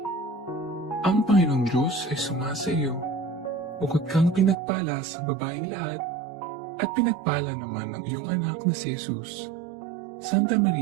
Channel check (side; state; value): left; drops out; at 4.5 s